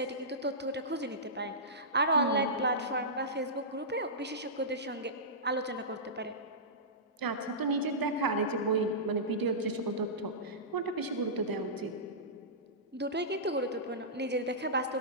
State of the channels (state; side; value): normal; both; correlation -0.18